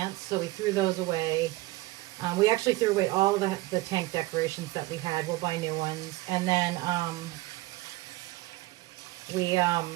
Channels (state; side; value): quieter; left; 19.6 dB